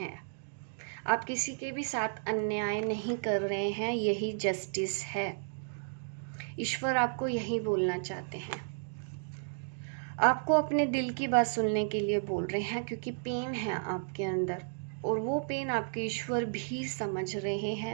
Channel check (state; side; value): silent; left; digital silence